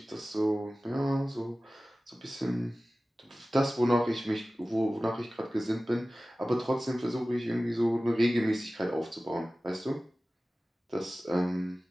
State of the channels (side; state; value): both; normal; correlation 0.97